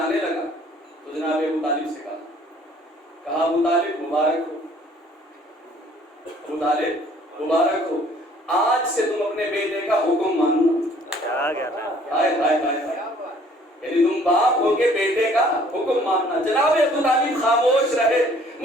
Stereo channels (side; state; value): both; normal; correlation 0.57